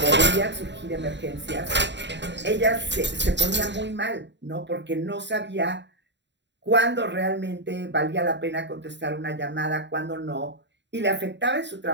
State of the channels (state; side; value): late; left; 0.52 ms